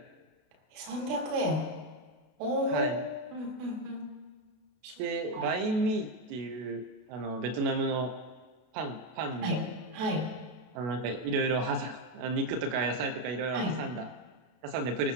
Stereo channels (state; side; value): late; left; 32 ms